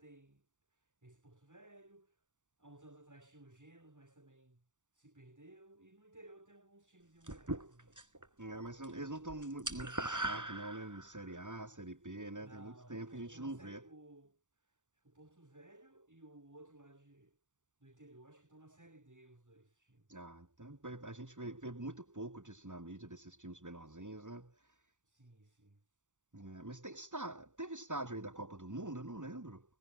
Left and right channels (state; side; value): late; left; 0.86 ms